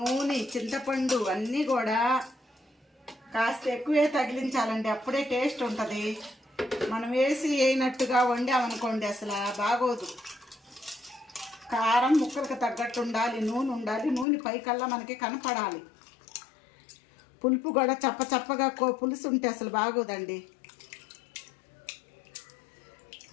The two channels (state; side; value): drops out; right; at 14.2 s